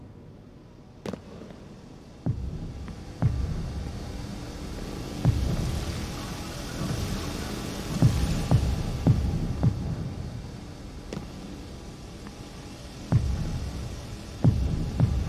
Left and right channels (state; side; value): identical; both; correlation 1.00